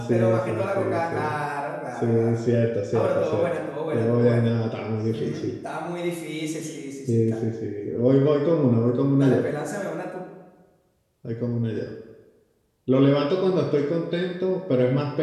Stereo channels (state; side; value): identical; both; correlation 1.00